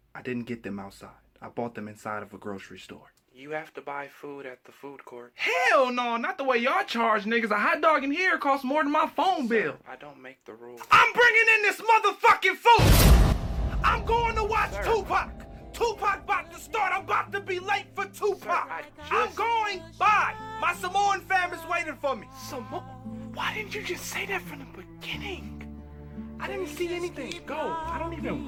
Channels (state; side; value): identical; both; correlation 1.00